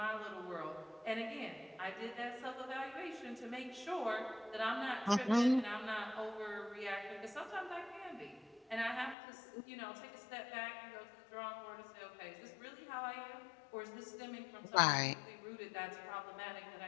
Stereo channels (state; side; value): drops out; right; at 9.2 s